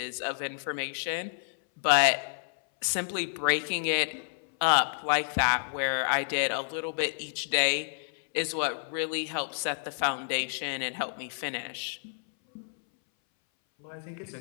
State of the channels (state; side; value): silent; right; 58 dB below the other